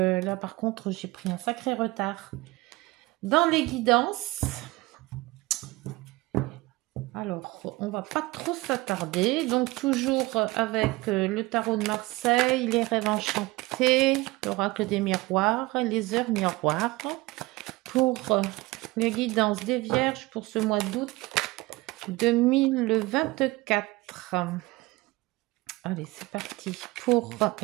par contre, j'ai pris un sacré retard dans les guidances. Alors, on va pas trop s'attarder. Donc toujours avec le tarot de Marseille, les rêves enchantés, l'oracle des miroirs, les heures miroirs. Pour les guidances des Vierges pour ce mois d'août 2024. Allez, c'est parti pour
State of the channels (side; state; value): left; quieter; 21.2 dB